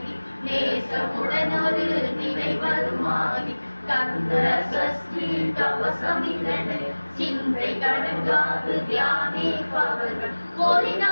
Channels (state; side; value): inverted; both; correlation -1.00